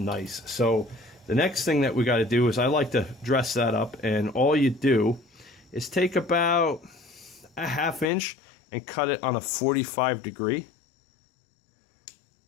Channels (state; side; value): drops out; right; at 8.1 s